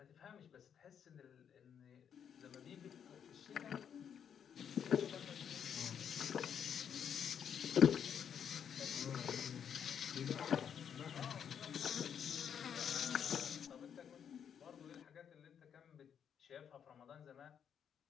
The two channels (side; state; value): right; quieter; 8.1 dB